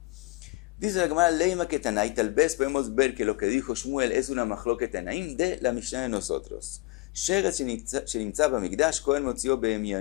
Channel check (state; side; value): quieter; right; 21.6 dB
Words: Dice la Gemara, Leima que Tanai, tal vez podemos ver que lo que dijo Shmuel es una machloket Tanaim de la Mishnah de nosotros. Sheretz שנמצא במקדש, כהן מוציאו